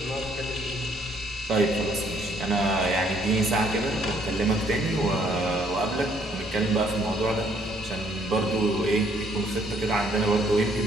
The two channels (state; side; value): normal; both; correlation 0.66